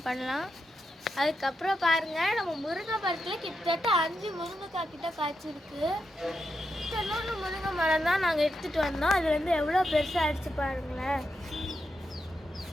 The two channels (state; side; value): normal; both; correlation 0.85